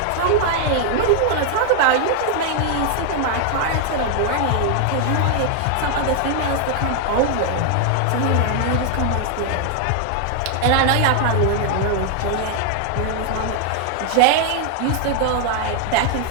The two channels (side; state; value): both; different; correlation 0.00